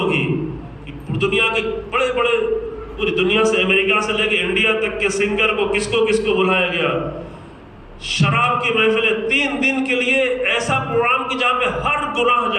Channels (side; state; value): both; identical; correlation 1.00